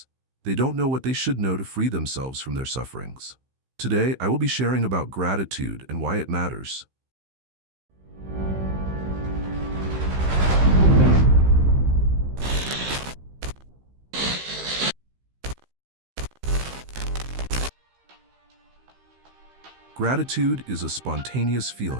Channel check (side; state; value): left; late; 15 ms